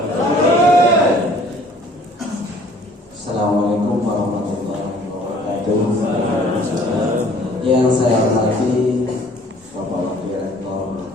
Assalamualaikum warahmatullahi wabarakatuh. Yang saya hormati Bapak Wakil Rektor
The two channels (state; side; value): normal; both; correlation 0.55